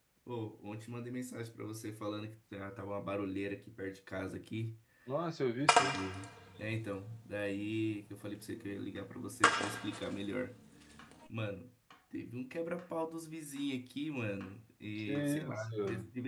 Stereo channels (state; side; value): identical; both; correlation 1.00